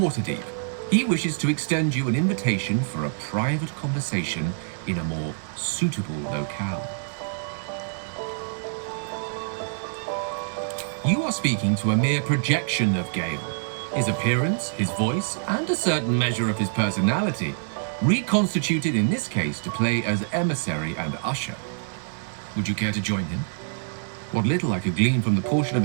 He wishes to extend you an invitation for a private conversation in a more suitable locale. You are speaking to a mere projection of Gale. His appearance, his voice, and a certain measure of his personality, reconstituted in this case to play as emissary and usher. Would you care to join him? What little I could glean from the portion of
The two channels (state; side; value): silent; left; digital silence